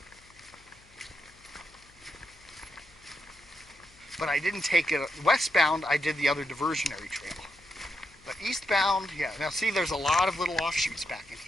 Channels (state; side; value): noise; left; hum, 27 dB below the sound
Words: But I didn't take it westbound, I did the other diversionary trail. But eastbound, yeah, now see there's a lot of little offshoots back in